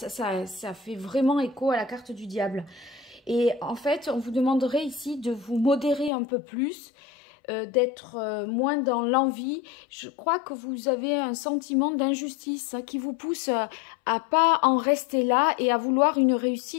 fait vraiment écho à la carte du diable. Et en fait, on vous demanderait ici de vous modérer un peu plus, d'être moins dans l'envie. Je crois que vous avez un sentiment d'injustice hein, qui vous pousse à pas en rester là et à vouloir une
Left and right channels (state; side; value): drops out; right; at 6.1 s